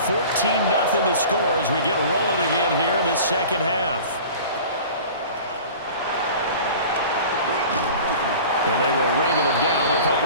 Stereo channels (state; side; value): inverted; both; correlation -0.41